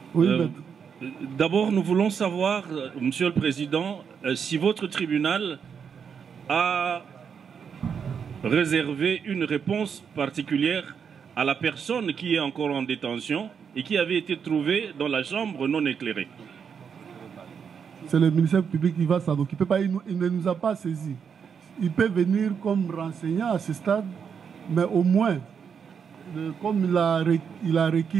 Oui, d'abord, nous voulons savoir, Monsieur le Président, si votre tribunal a réservé une réponse particulière à la personne qui est encore en détention et qui avait été trouvée dans la chambre non éclairée. C'est le ministère public qui va s'en occuper. Il ne nous a pas saisis. Il peut venir comme renseignant à ce stade, mais au moins, comme il a requis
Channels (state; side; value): quieter; left; 6.9 dB